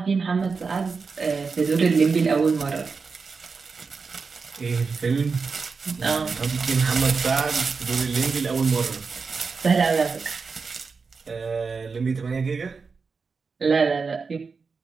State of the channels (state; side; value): quieter; left; 4.9 dB